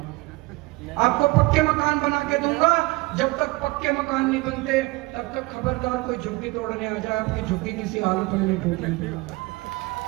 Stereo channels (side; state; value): left; quieter; 22.8 dB